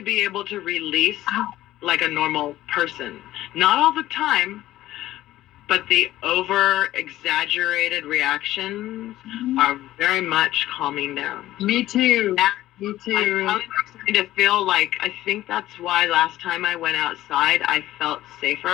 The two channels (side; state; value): right; quieter; 14.8 dB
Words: able to release like a normal person. Not all the time, but the over-exaggerated reactions are very much calming down. Me too. Me too. I'm starting to feel like, I think that's why last time I went outside, I felt